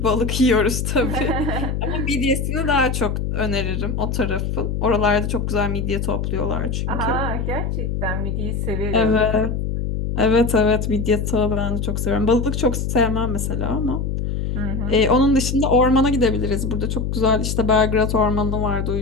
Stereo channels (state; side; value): noise; left; hum, 2 dB below the sound